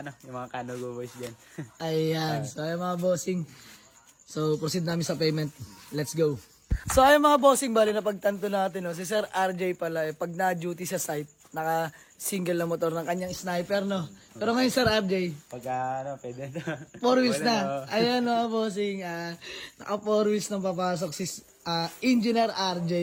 Kanugo boys dyan. Ayan, so ayan mga bossing. So proceed namin sa payment. Let's go. So ayan mga bossing, bali na pagtanto natin, no? Si Sir RJ pala, pag na-duty sa site, naka-single na motor ng kanyang sniper, no? Pero ngayon Sir RJ, Pwede na. 4 wheels na. Ayan mga bossing, naka 4 wheels na papasok si Engineer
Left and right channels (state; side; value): identical; both; correlation 1.00